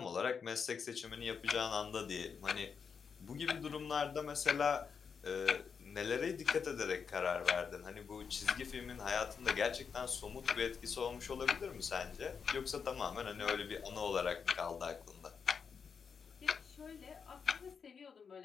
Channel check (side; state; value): right; quieter; 6.2 dB